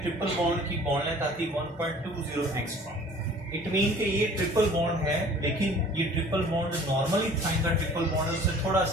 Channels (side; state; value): both; normal; correlation 0.49